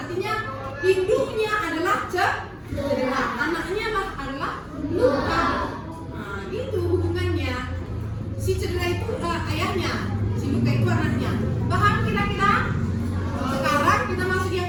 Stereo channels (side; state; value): both; identical; correlation 1.00